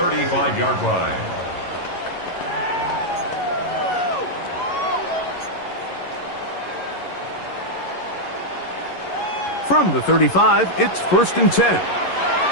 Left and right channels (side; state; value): right; late; 11 ms